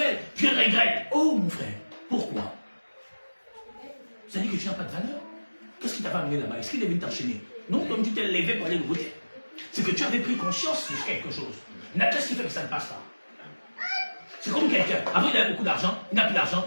je regrette. Oh mon frère, pourquoi? Ça dit que tu n'as pas de valeur. Qu'est-ce qui t'a pas amené là-bas? Est-ce qu'il est venu t'enchaîner? Non, comme tu t'es levé pour aller le voter. C'est que tu avais pris conscience de quelque chose. Qu'est-ce qui fait que ça ne passe pas? C'est comme quelqu'un, avant il avait beaucoup d'argent, il n'a plus d'argent,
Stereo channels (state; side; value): inverted; both; correlation -1.00